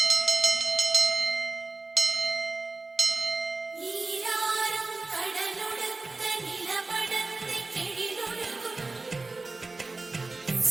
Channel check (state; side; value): quieter; left; 3.5 dB